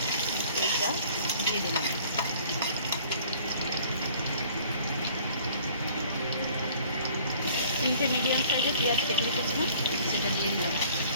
তেলটা দিয়ে দিলাম। তিনটে মিডিয়াম সাইজের পেঁয়াজ কেটে রেখেছিলাম, সেটা দিয়ে দিলাম।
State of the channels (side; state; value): both; inverted; correlation -0.54